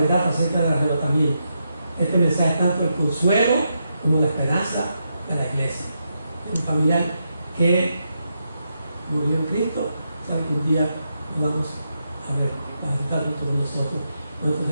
acerca del arrebatamiento. Este mensaje es tanto el consuelo como la esperanza de la iglesia. Un familiar que murió en Cristo, sabe que un día lo vamos a ver, va a estar junto con nosotros. Cuando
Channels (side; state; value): both; inverted; correlation -0.83